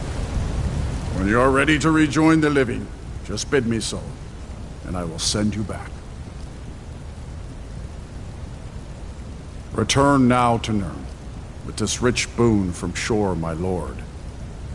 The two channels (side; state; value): both; identical; correlation 1.00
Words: When you are ready to rejoin the living, just bid me so, and I will send you back. Return now to Nirn, with this rich boon from Shore, my lord.